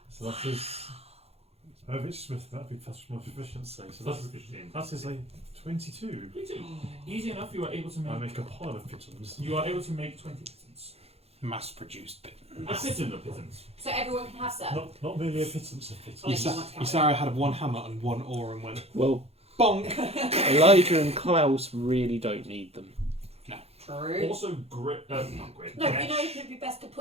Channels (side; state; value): left; late; 0.29 ms